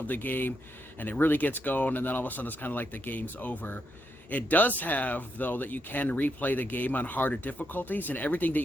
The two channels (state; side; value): normal; both; correlation 0.81